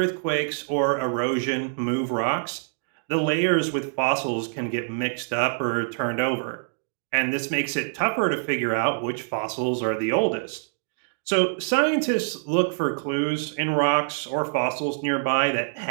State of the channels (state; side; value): silent; left; digital silence